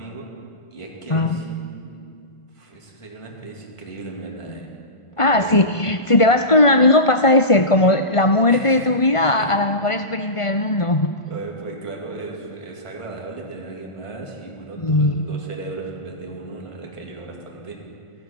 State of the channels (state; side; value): late; right; 1.5 ms